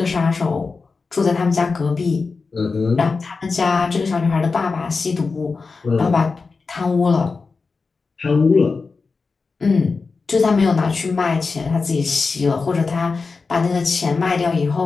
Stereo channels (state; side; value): quieter; right; 4.4 dB